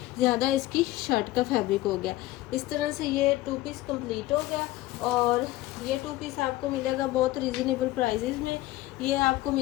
ज़्यादा इसकी शर्ट का फैब्रिक हो गया। इस तरह से ये 2 पीस कंप्लीट हो गया और ये 2 पीस आपको मिलेगा बहुत रीज़नेबल प्राइजेज़ में। ये आपको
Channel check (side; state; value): right; quieter; 16.8 dB